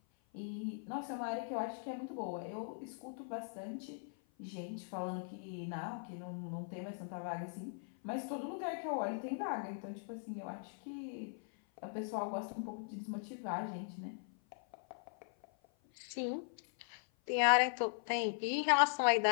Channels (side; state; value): right; silent; 51 dB below the other